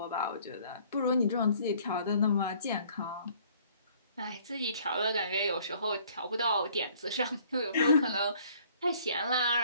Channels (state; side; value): inverted; both; correlation -0.58